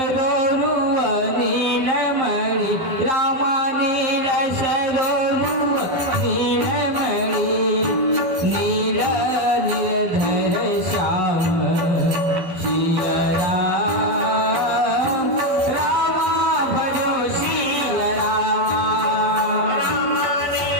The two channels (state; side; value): late; left; 11 ms